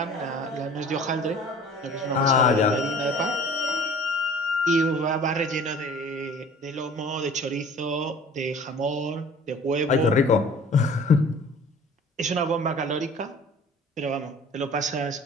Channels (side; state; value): both; normal; correlation 0.48